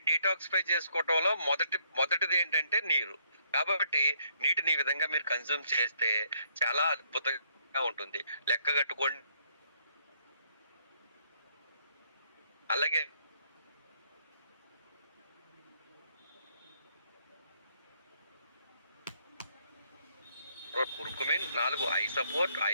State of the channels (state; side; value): inverted; both; correlation -0.70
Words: డీటాక్సిఫై చేసుకోవటంలో మొదటిది ఏంటంటే నీరు. కాబట్టి నీటిని ఈ విధంగా మీరు కన్జ్యూమ్ చేస్తే చాలా అద్భుతంగా ఉంటుంది. లెక్క కట్టుకోండి. అలాగే curcumin, 4 I support,